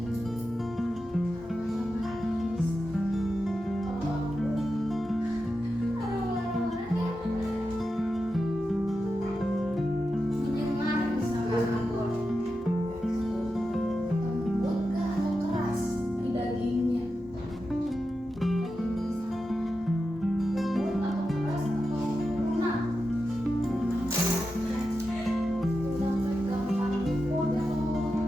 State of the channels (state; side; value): normal; both; correlation 0.90